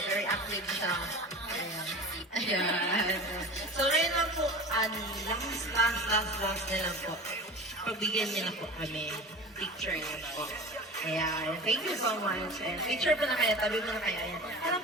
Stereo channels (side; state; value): both; normal; correlation 0.35